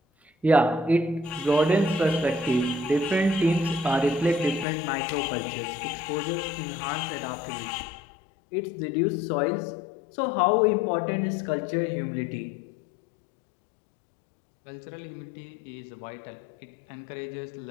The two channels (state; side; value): drops out; right; at 4.7 s